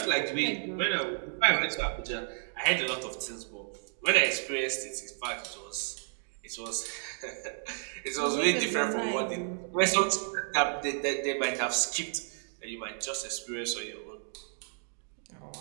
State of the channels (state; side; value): silent; left; digital silence